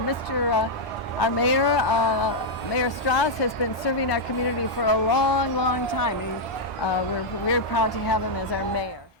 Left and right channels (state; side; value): normal; both; correlation -0.04